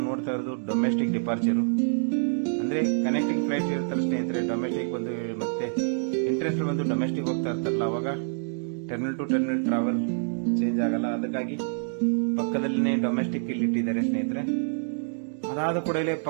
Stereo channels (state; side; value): silent; left; digital silence